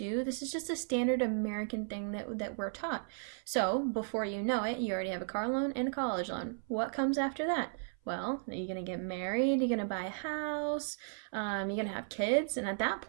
This is just a standard American thing that we're taught. So before you know it, you already have a car loan and a college loan. What comes after that? Well, are you going to get married? You're going to buy a house? You're going to have kids? And at that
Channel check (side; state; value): left; silent; 54 dB below the other